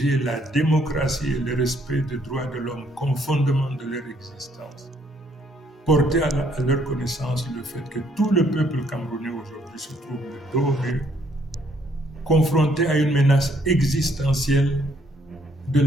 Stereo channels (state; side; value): normal; both; correlation 0.67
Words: la démocratie et le respect des droits de l'homme comme fondement de leur existence. Porter à leur connaissance le fait que tout le peuple camerounais aujourd'hui se trouve le dos au mur, confronté à une menace existentielle de